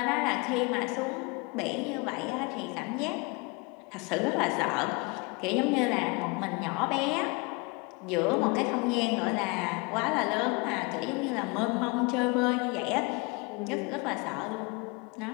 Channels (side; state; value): right; quieter; 28.9 dB